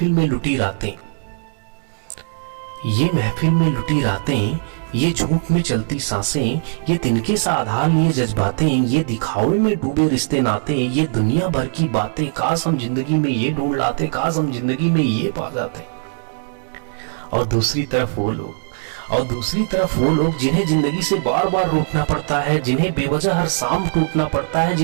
में लुटी रातें, ये झूठ में चलती सांसें, ये तिनके सा आधार लिए जज्बातें, ये दिखावे में डूबे रिश्ते नाते, ये दुनिया भर की बातें, काश हम जिंदगी में ये ढूंढ लाते, काश हम जिंदगी में ये पा जाते। और दूसरी तरफ वो लोग जिन्हें जिंदगी से बार बार रूठना पड़ता है, जिन्हें बेवजह हर शाम टूटना पड़ता है,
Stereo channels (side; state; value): left; silent; digital silence